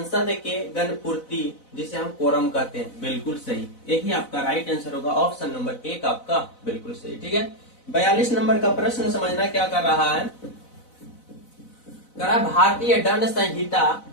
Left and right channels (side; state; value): right; late; 4.0 ms